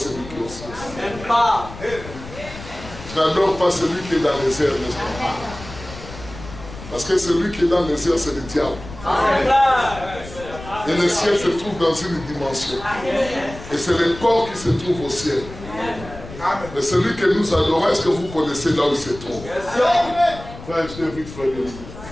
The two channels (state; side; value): noise; left; rumble, 14 dB below the sound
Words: qui est au ciel. Je n'adore pas celui qui est dans les airs, n'est-ce pas? Parce que celui qui est dans les airs, c'est le diable. Et le ciel se trouve dans une dimension. Et c'est le corps qui se trouve au ciel. Mais celui que nous adorons, est-ce que vous connaissez là où il se trouve? Frère, je t'invite, frère.